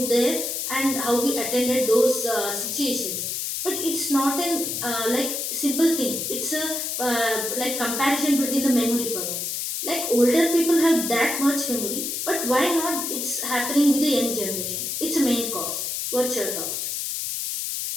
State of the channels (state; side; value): noise; left; hiss, 3 dB below the sound